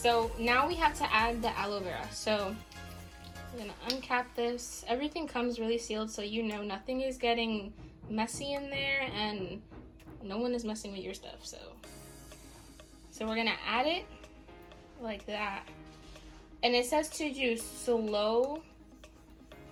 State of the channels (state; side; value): identical; both; correlation 1.00